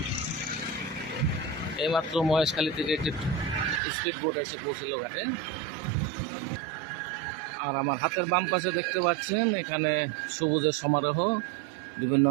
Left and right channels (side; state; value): left; drops out; at 3.8 s